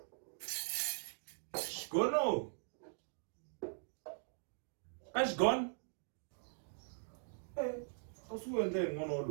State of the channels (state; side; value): silent; left; digital silence